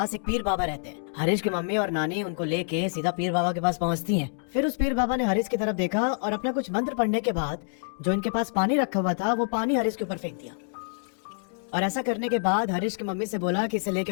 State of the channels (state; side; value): silent; right; digital silence